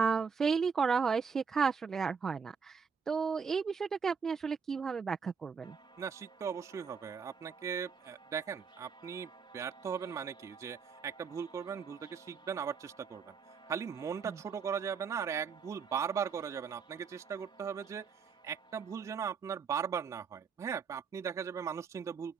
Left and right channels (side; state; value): left; quieter; 5.9 dB